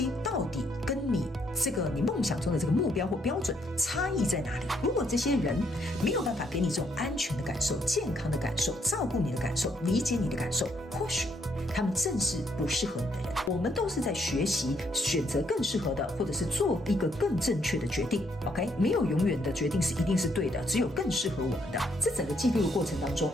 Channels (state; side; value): normal; both; correlation 0.72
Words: 到底跟你你梦想中的这个目标或标准差异在哪里。如果这些人没有办法给你这种安全的感受、健康的感受、照顾你的感受、理解你的感受，或许他们正是不适合你的人。我们都是在学习选择更适合的，或者是做一个更正确的决定。 OK， 没有永远的决定是一定是对的，只有更适合我们的。这整个记录的过程当中，